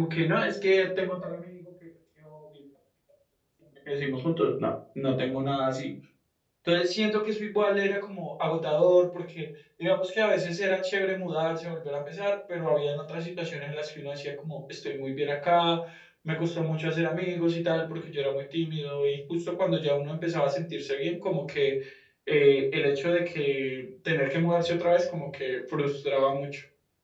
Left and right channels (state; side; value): identical; both; correlation 1.00